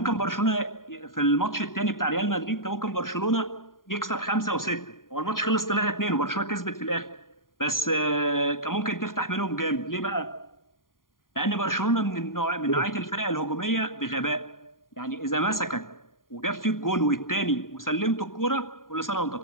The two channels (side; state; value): right; late; 0.91 ms